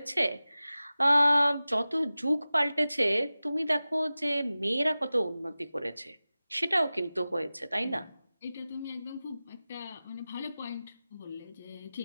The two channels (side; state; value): both; inverted; correlation -0.96